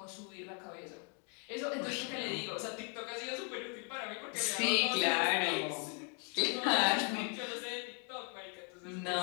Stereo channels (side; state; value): right; quieter; 38.2 dB